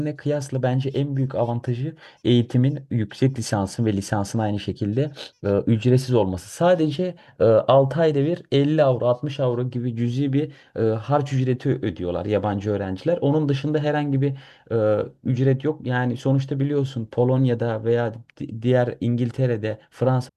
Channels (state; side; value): identical; both; correlation 1.00